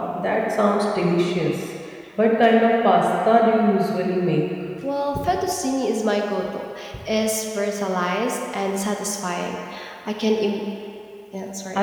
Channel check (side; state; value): both; identical; correlation 1.00